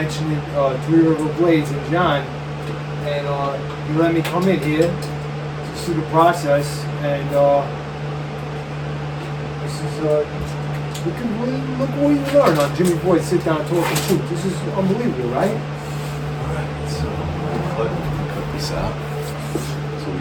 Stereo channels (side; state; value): both; identical; correlation 1.00